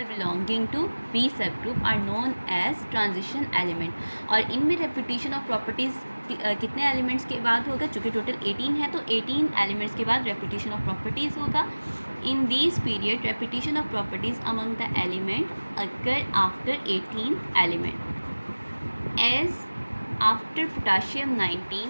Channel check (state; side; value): inverted; both; correlation -1.00